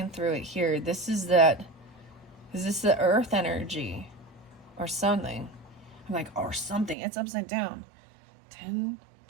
through it here. This is that. Is this the earth energy or something? I'm like, or something. It's upside down. 10,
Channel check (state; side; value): drops out; left; at 7.0 s